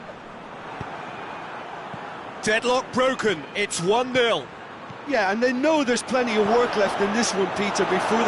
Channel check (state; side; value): identical; both; correlation 1.00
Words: Deadlock broken, it's 1-0. Yeah, and they know there's plenty of work left in this one, Peter, before